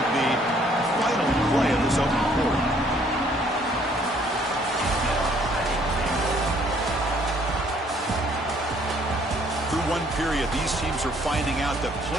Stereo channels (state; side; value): normal; both; correlation 0.63